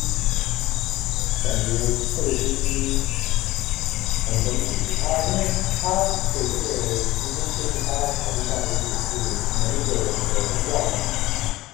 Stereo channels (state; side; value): quieter; right; 17.6 dB